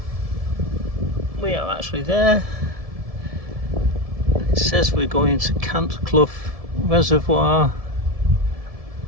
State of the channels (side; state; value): left; late; 1.7 ms